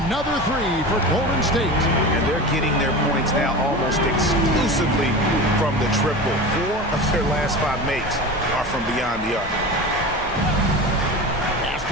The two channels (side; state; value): both; normal; correlation 0.30